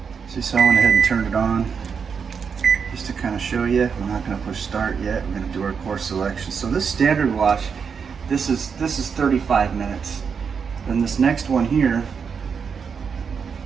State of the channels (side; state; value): left; quieter; 6.3 dB